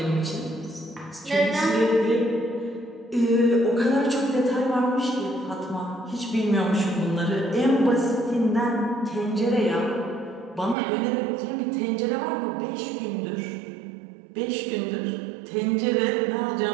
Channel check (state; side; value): drops out; left; at 10.8 s